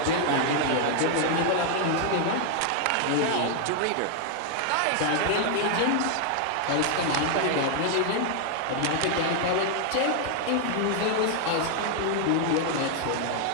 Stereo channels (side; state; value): both; different; correlation 0.00